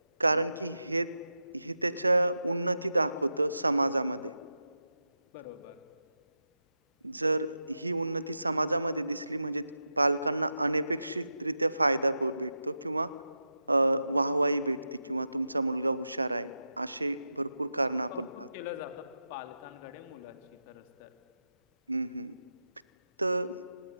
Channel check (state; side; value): inverted; both; correlation -0.91